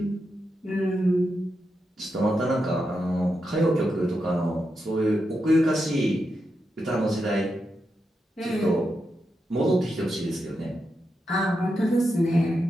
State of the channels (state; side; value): normal; both; correlation 0.86